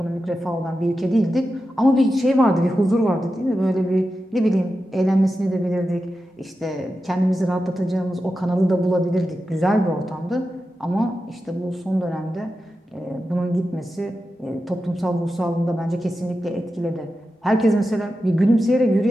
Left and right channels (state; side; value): normal; both; correlation 0.91